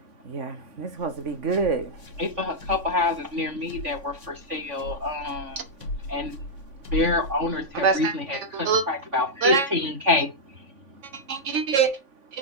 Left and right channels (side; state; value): left; late; 3.5 ms